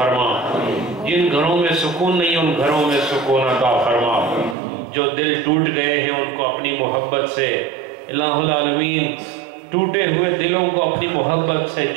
جن گھروں میں سکون نہیں ان گھروں میں سکون عطا فرما، جو دل ٹوٹ گئے ہیں ان کو اپنی محبت سے الہ العالمین ٹوٹے ہوئے دلوں کو اپنی محبت سے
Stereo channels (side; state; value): left; drops out; at 4.5 s